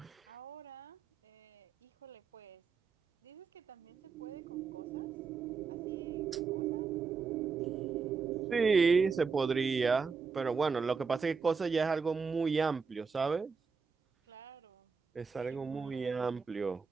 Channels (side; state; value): left; quieter; 5.2 dB